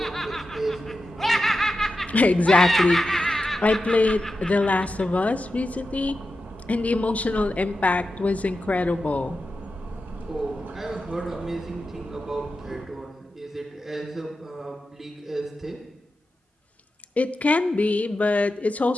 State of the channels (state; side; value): normal; both; correlation 0.90